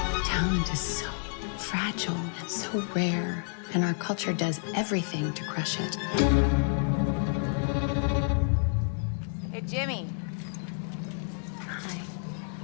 Talent is so fragile and so rare, and our culture does everything to crush it. Hey, Jimmy. Hi.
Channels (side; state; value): right; silent; 58 dB below the other